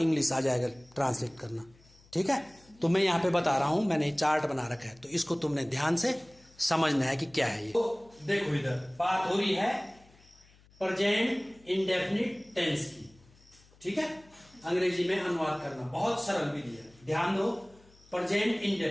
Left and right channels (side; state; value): left; noise; hum, 28 dB below the sound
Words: आ जाएगा ट्रांसलेट करना। ठीक है, तो मैं यहाँ पे बता रहा हूं, मैंने चार्ट बना रखा है, तो इसको तुमने ध्यान से समझना है कि क्या है ये। तो देखो, इधर बात हो रही है प्रेजेंट इंडेफिनिट टेंस की। ठीक है, अंग्रेजी में अनुवाद करना बहुत सरल विधि है, ध्यान दो। प्रेजेंट